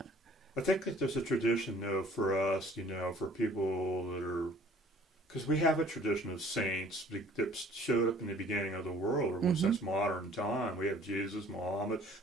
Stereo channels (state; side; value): normal; both; correlation 0.54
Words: I think that there's a tradition, though, for us, for people that are, because we have a tradition of saints that showed up in the beginning of the world, or since modern time. We have Jesus, Muhammad,